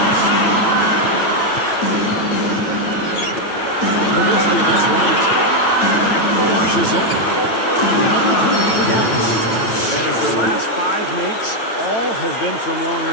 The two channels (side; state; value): right; late; 9.0 ms